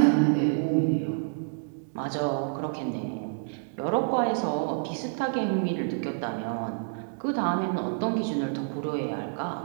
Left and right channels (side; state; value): left; silent; digital silence